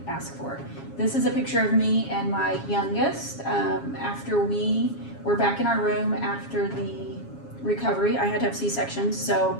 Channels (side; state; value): right; late; 7.3 ms